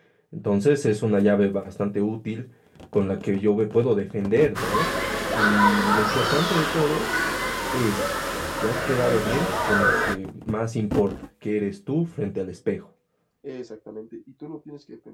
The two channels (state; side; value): identical; both; correlation 1.00